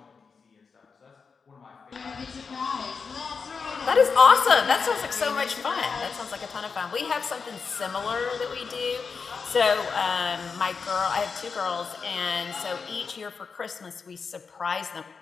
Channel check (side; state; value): right; quieter; 5.3 dB